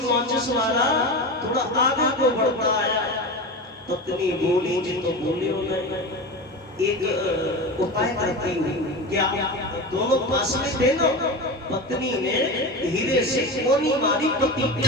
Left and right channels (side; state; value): both; normal; correlation 0.25